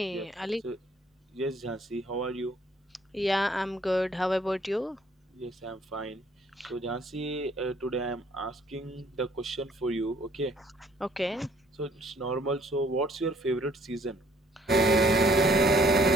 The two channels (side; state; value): both; normal; correlation 0.61